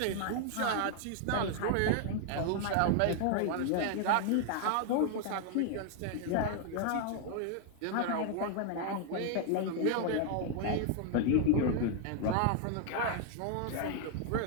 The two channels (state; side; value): different; both; correlation 0.00